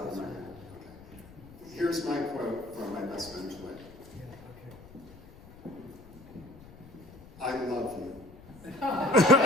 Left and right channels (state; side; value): noise; left; rumble, 20 dB below the sound